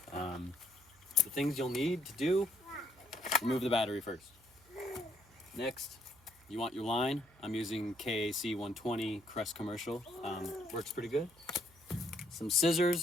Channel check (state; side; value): noise; right; hum, 27 dB below the sound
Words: The things you'll need to do: remove the battery first. Next, you want your line. I'm using KAC120 Kress commercial. Works pretty good. Some